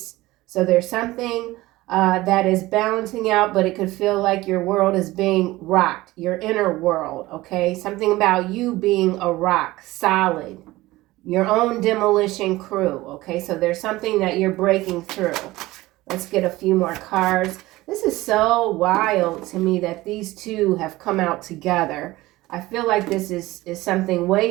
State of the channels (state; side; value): quieter; left; 18.6 dB